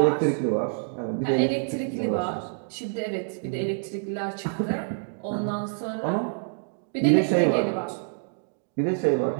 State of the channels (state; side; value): silent; left; digital silence